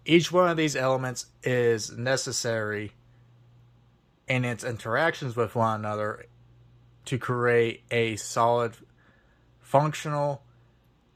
Each one of these elements is necessary in its interactions with one another to create a solid, functional,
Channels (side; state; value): both; identical; correlation 1.00